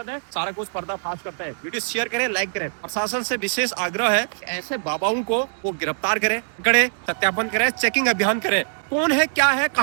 है। सारा कुछ पर्दाफाश करता है। वीडियो शेयर करें, लाइक करें। प्रशासन से विशेष आग्रह है कि ऐसे बाबाओं को वो गिरफ्तार करें, पकड़े, सत्यापन करें, चेकिंग अभियान करें, कौन है, क्या है,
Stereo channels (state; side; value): silent; left; digital silence